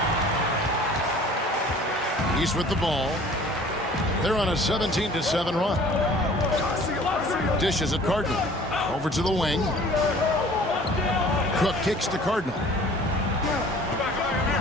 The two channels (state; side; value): normal; both; correlation 0.49